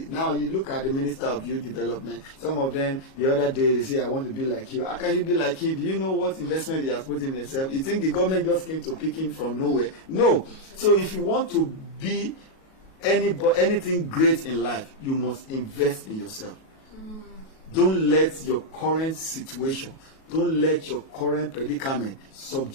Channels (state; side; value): late; right; 37 ms